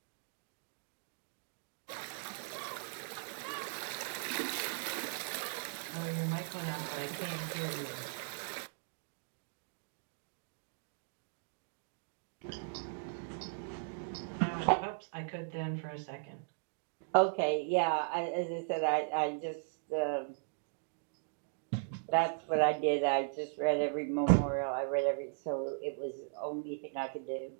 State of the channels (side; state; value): left; silent; digital silence